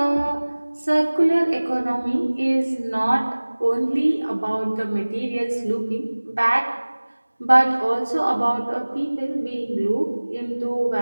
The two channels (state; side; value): inverted; both; correlation -1.00